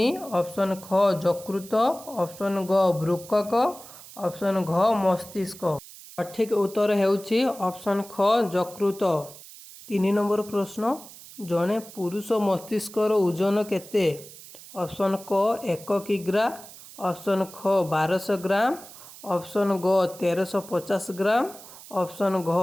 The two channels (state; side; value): noise; right; hiss, 17 dB below the sound